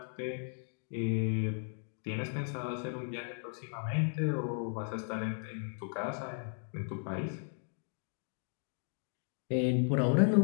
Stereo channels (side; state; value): right; silent; 54 dB below the other